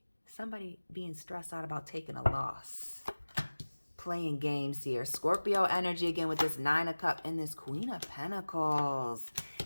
Somebody being stressed out about taking a loss. Playing games here. Scorpio energy again with this 9 of Cups and this Queen of Pentacles.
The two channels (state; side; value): inverted; both; correlation -1.00